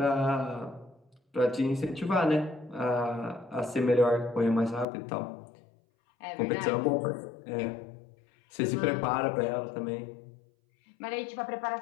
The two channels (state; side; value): drops out; right; at 4.9 s